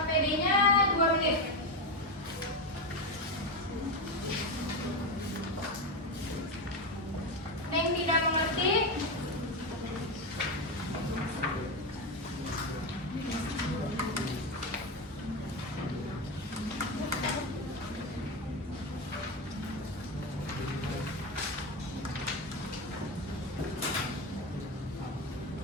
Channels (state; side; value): normal; both; correlation 0.14